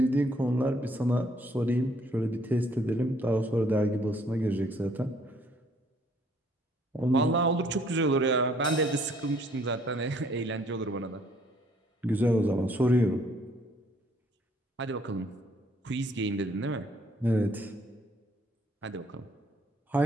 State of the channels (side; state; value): both; normal; correlation 0.64